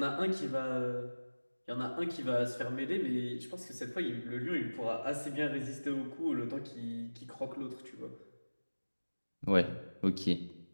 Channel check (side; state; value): both; inverted; correlation -1.00